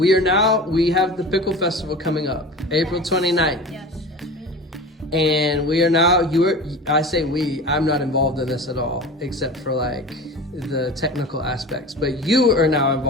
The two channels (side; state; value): both; normal; correlation 0.33